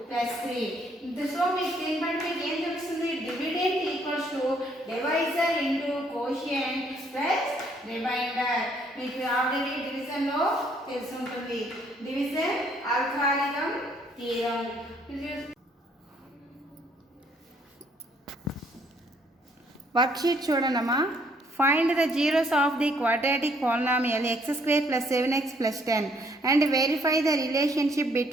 +3. సో మీకు దీన్ని బట్టి మీకు ఏం తెలుస్తుంది dividend equals to divisor into quotient plus remainder. మీకు ఆల్రెడీ డివిజన్ లో తెలిసి ఉంటుంది. Division algorithm theorem. వర్క్షీట్ చూడండమ్మా. Find the zeros of the quadratic polynomial x² plus 7x plus 10 and verify the relationship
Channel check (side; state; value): both; normal; correlation 0.66